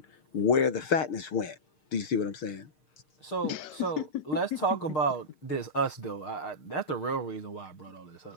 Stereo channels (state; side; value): late; right; 6.5 ms